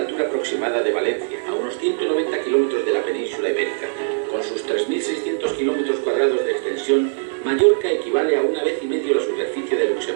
aproximada de Valencia, a unos 190 kilómetros de la península ibérica. Con sus 3.600 kilómetros cuadrados de extensión, Mallorca equivale a 1,5 veces la superficie de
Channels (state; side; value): silent; left; digital silence